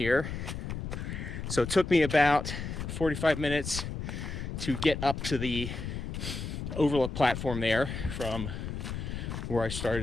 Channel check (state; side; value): noise; left; rumble, 5 dB below the sound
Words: So it took me about 45 minutes to get up to the overlook platform there from where I